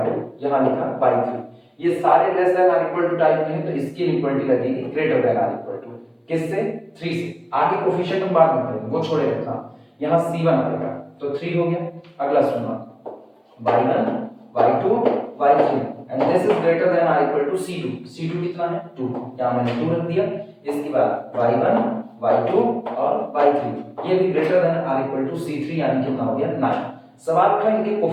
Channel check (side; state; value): both; identical; correlation 1.00